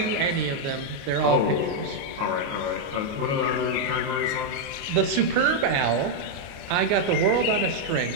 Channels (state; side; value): late; left; 29 ms